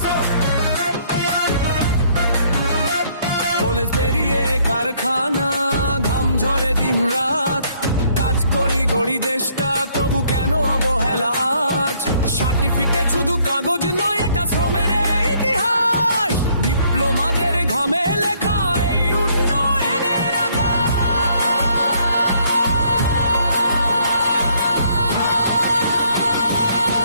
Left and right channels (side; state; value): both; inverted; correlation -0.66